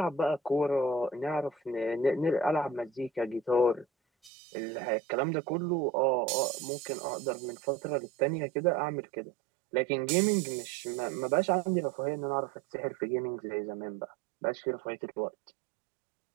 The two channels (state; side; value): drops out; left; at 4.3 s